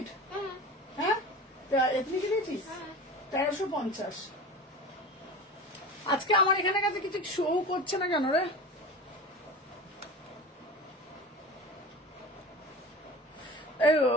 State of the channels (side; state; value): both; normal; correlation 0.33